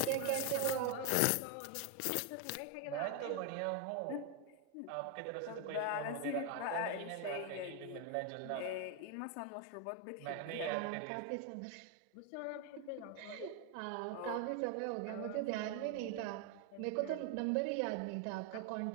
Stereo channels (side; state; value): both; different; correlation 0.01